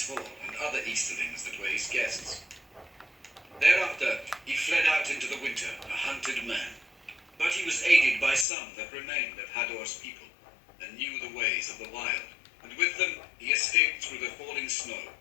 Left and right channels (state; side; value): drops out; right; at 8.5 s